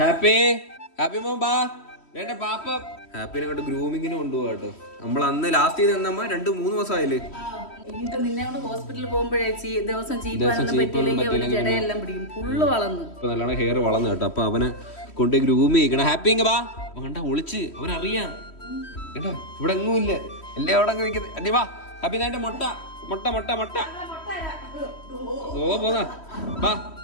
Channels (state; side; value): late; right; 3.1 ms